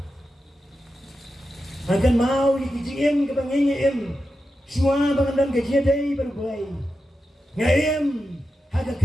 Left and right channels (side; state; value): both; normal; correlation 0.89